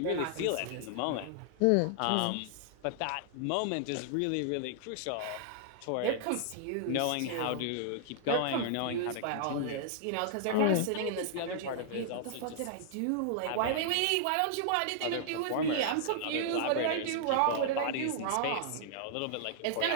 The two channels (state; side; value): different; both; correlation -0.01